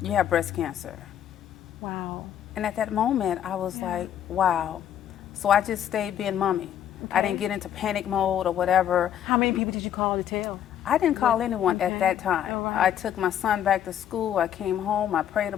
you have breast cancer. Wow. And at that moment, I was like, wow. So I just stayed being mommy. Okay. I didn't get into panic mode or whatever. How many people did you call to tell? I didn't call anyone at that time. All right. I took my son back to school. I came home. I prayed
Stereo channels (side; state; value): right; quieter; 10.2 dB